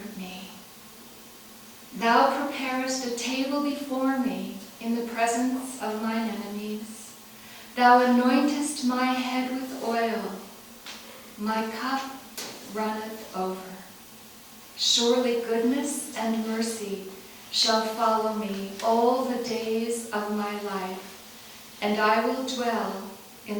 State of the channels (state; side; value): identical; both; correlation 1.00